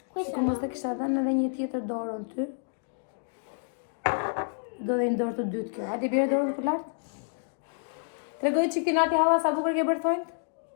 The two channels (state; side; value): silent; right; digital silence